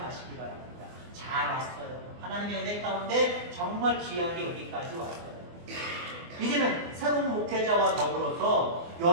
바랍니다. 잘 왔어요. 하나님의 은혜 가운데 정말 귀하게 여기까지 왔어요. 이제는 새로운 목회자와 더불어서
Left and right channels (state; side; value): late; left; 24 ms